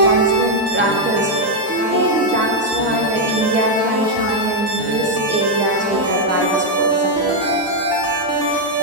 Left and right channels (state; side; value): normal; both; correlation 0.01